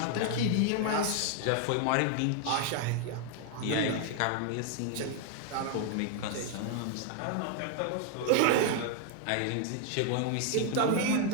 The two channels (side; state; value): both; different; correlation 0.00